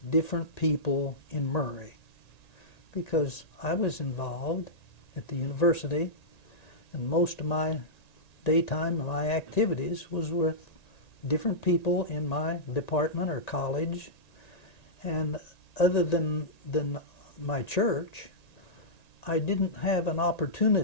different people in Murray, because I was involved at the university, and most of my daytime and my activities was with different people in my department or college, and other than my church, I didn't have an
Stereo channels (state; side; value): late; right; 1.9 ms